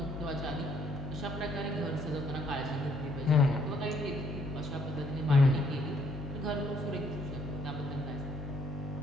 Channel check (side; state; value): both; normal; correlation 0.66